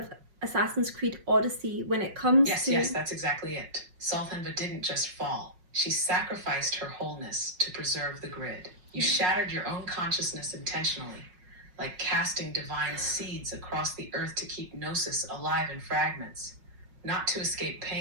Assassin's Creed Odyssey when it comes to... Yes, that's exactly it. Solthan-va didn't just fall. She sacrificed her wholeness to preserve the grid. You shattered your own consciousness intentionally, like casting divine seeds across the earth to keep Gnosis alive in fragments, not to escape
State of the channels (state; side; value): late; left; 5.5 ms